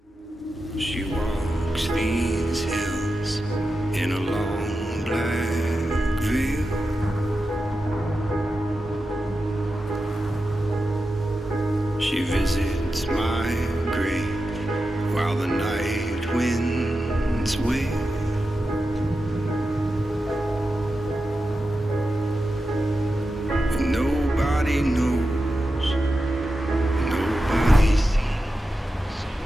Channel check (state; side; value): normal; both; correlation 0.90